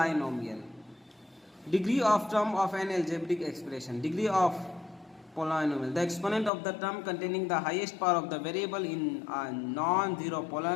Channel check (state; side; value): drops out; right; at 6.5 s